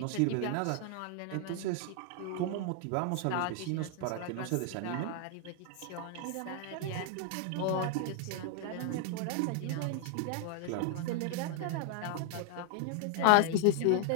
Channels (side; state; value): both; different; correlation 0.00